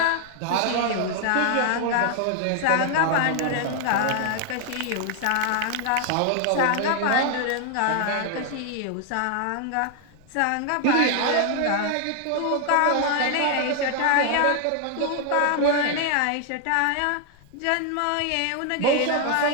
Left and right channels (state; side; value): different; both; correlation 0.00